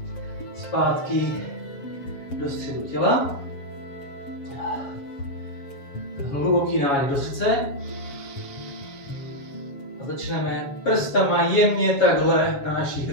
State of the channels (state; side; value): late; right; 7.3 ms